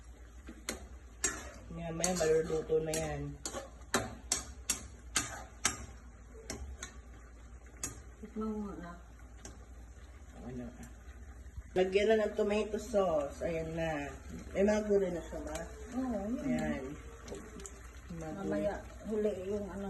Yan, may maluluto na yan. Tikman mo na. Ano? Lagyan na ng tomato sauce. Ayan na. May mga gulay na siya ba? Oo, yun. Ayan. Mamaya huli yung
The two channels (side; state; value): both; identical; correlation 1.00